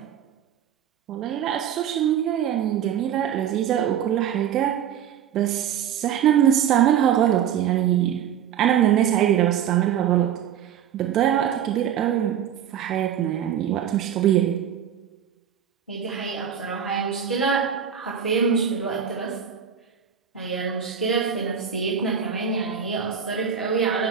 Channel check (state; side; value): quieter; left; 9.0 dB